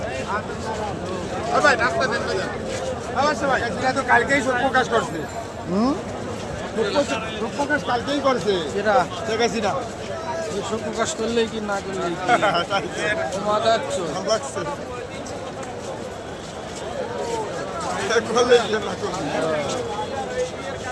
কালকেই শোক প্রকাশ করছে, শোক প্রকাশ কালকেই করছে, সেটা দেখেছি না শোক প্রকাশ করলেই কি না করলেই কি মাথা যাচ্ছ। লাগছে করলেই কি না করলে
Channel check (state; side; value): identical; both; correlation 1.00